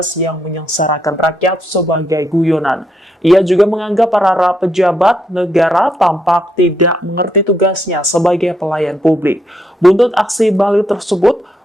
yang menyengsarakan rakyat sebagai guyonan. Ia juga menganggap para pejabat negara tampak tidak mengerti tugasnya sebagai pelayan publik. Buntut aksi Bahlil tersebut,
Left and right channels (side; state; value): both; normal; correlation 0.77